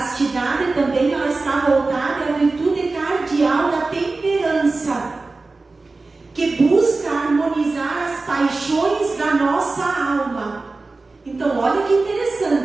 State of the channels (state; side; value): quieter; left; 3.6 dB